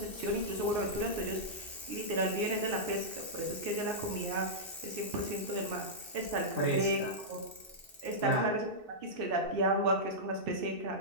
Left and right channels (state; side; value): late; left; 2.6 ms